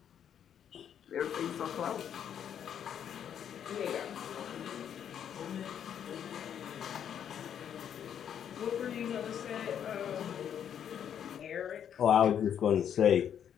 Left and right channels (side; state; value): right; quieter; 9.0 dB